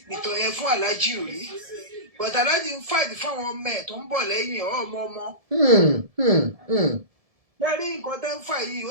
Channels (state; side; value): late; left; 1.7 ms